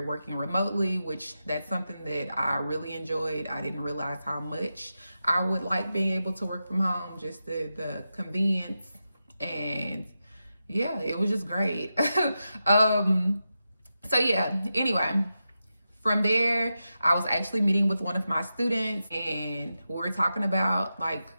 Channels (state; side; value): inverted; both; correlation -0.90